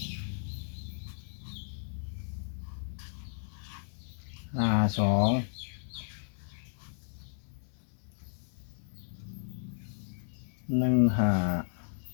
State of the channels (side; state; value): right; silent; digital silence